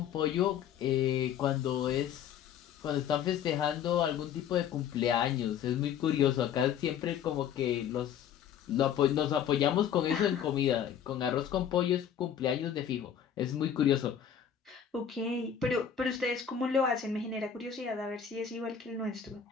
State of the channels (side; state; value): right; quieter; 8.6 dB